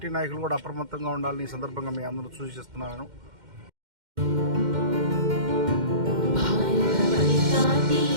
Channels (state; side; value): late; left; 2.1 ms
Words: నాయకులు కూడా అప్రమత్తంగా ఉండాలని ఈ సందర్భంగా మీ అందరూ సూచిస్తున్నాను.